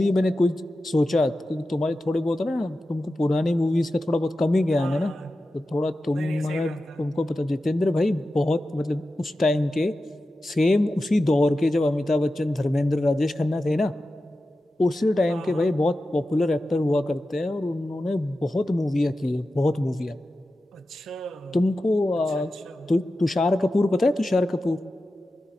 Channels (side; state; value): both; normal; correlation 0.93